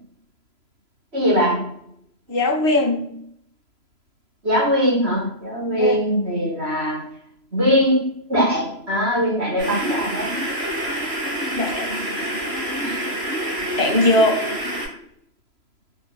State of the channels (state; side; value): late; left; 3.0 ms